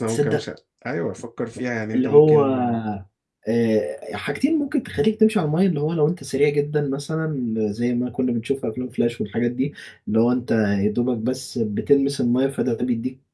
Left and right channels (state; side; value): identical; both; correlation 1.00